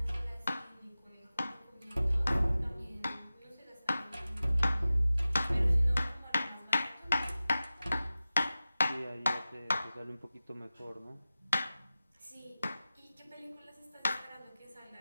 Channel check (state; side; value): inverted; both; correlation -0.95